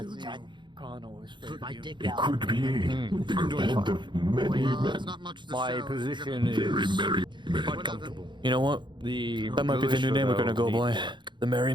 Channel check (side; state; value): left; late; 0.23 ms